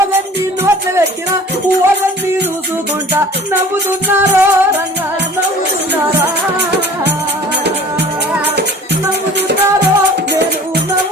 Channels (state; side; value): normal; both; correlation 0.46